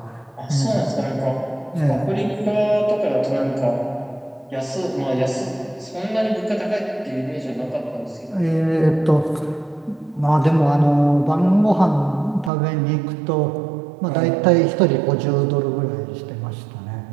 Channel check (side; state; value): left; drops out; at 12.5 s